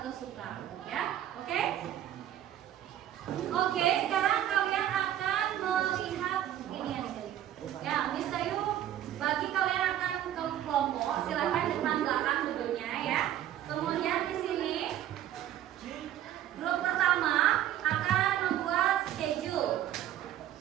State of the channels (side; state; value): left; quieter; 11.8 dB